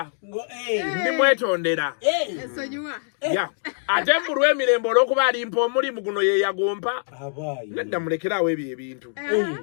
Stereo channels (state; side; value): silent; right; digital silence